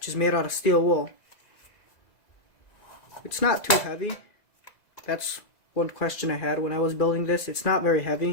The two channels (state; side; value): late; right; 2.0 ms